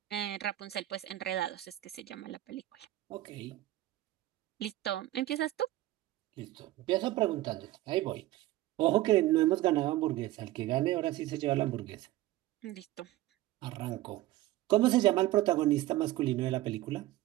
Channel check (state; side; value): quieter; left; 16.0 dB